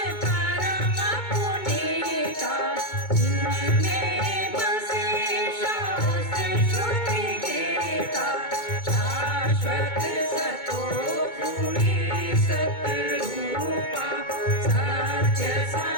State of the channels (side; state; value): right; late; 2.2 ms